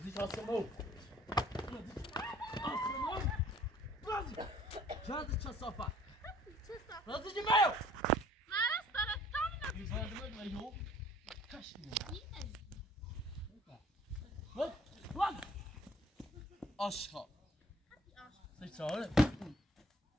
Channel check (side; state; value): both; normal; correlation 0.56